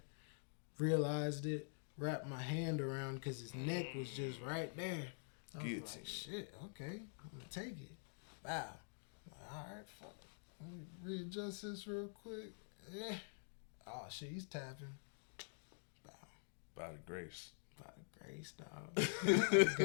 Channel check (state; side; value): silent; right; digital silence